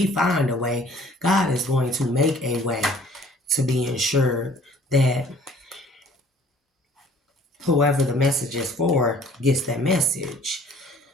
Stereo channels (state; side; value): normal; both; correlation 0.54